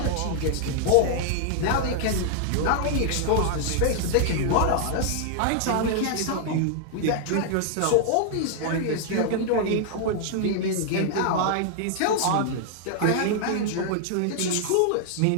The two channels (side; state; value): both; different; correlation 0.00